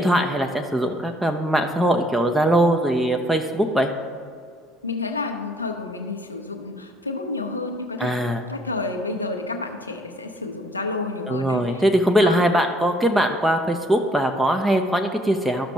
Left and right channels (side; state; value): both; normal; correlation 0.64